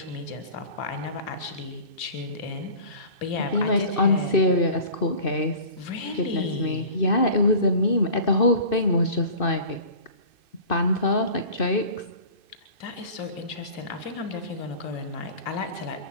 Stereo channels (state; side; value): late; right; 2.6 ms